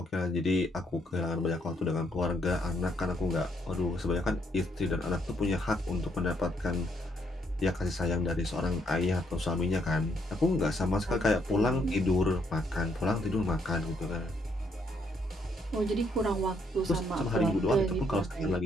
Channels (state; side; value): normal; both; correlation 0.73